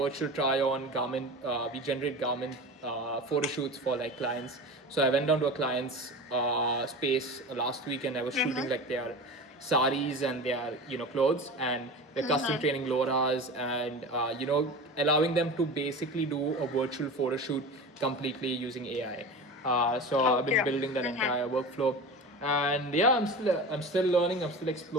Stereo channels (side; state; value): both; normal; correlation 0.31